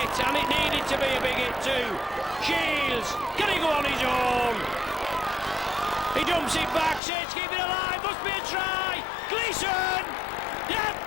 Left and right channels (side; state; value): right; drops out; at 7.0 s